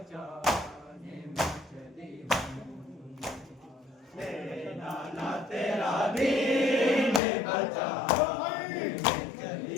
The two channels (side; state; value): right; drops out; at 7.2 s